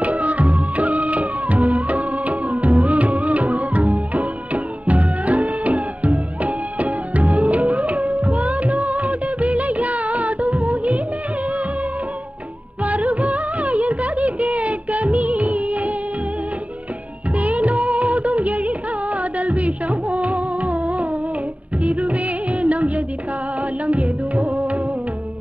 விஷமோ இருவே நம் எதிர்காலம் எதுவோ,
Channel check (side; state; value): left; late; 0.068 ms